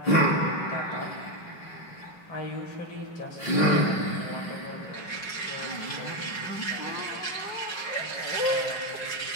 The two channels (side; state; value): right; late; 5.4 ms